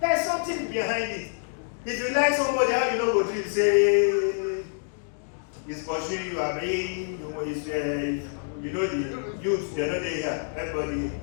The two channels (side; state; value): right; silent; digital silence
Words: something behind it. If you like somebody, how you know what dream? Say, it's pursuing you, you know the youth, they know they here. Everybody,